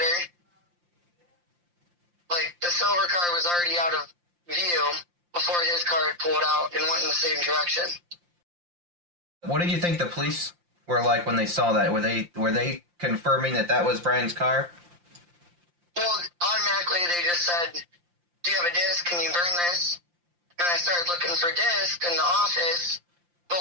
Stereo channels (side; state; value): left; late; 5.7 ms